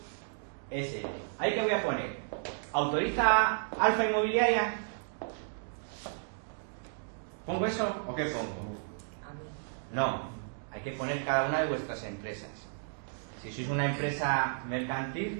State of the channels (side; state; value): left; silent; digital silence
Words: S. ¿Ahí qué voy a poner? ¿Autoriza Alfa Inmobiliaria? ¿Pongo eso o qué pongo? No, hay que poner cada una de vuestras empresas. Si sois una empresa